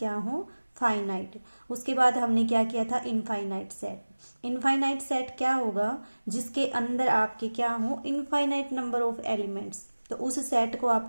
हो, फाइनाइट। उसके बाद हमने क्या किया था, इनफाइनाइट सेट। इनफाइनाइट सेट क्या होगा? जिसके अंदर आपके क्या हो, इनफाइनाइट नंबर ऑफ एलिमेंट्स। तो उस सेट को आप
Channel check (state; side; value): inverted; both; correlation -1.00